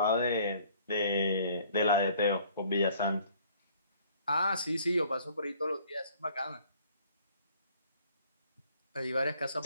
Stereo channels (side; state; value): both; inverted; correlation -0.57